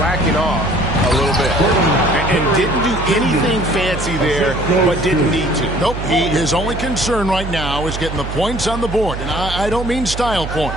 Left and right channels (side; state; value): right; noise; hum, 7 dB below the sound